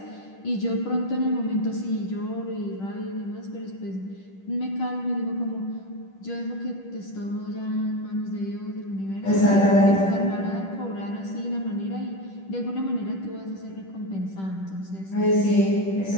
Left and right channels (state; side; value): late; right; 10 ms